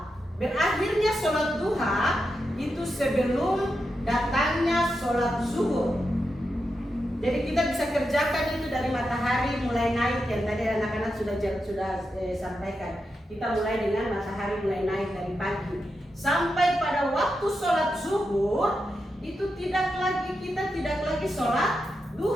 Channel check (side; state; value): both; normal; correlation 0.87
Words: Berakhirnya sholat duha itu sebelum datangnya sholat zuhur. Jadi kita bisa kerjakan itu dari matahari mulai naik, yang tadi anak-anak sudah sampaikan. Kita mulai dengan matahari mulai naik dari pagi sampai pada waktu sholat zuhur itu kita tidak lagi sholat